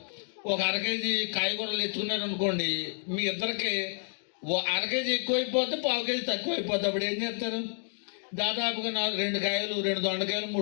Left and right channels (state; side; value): silent; right; digital silence